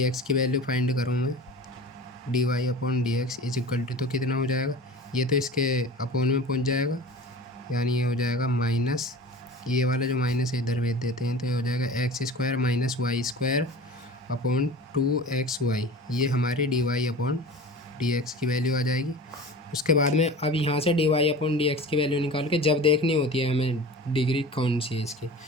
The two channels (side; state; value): both; normal; correlation 0.36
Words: x की वैल्यू फाइंड करूँ मैं, d y upon d x is equal to, तो कितना हो जाएगा, ये तो इसके अपॉन में पहुँच जाएगा, यानी ये हो जाएगा माइनस, ये वाला जो माइनस है इधर भेज देते हैं, तो ये हो जाएगा x square minus y square upon 2xy, ये हमारी d y upon d x की वैल्यू आ जाएगी। उसके बाद में अब यहाँ से d y upon d x की वैल्यू निकाल के जब देखनी होती है हमें डिग्री कौन सी है इसकी,